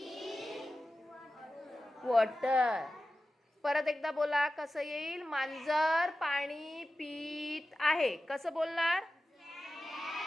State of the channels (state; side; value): normal; both; correlation 0.94